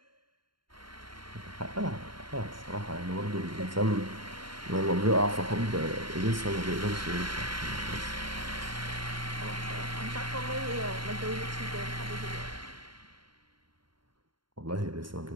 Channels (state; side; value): late; left; 0.73 ms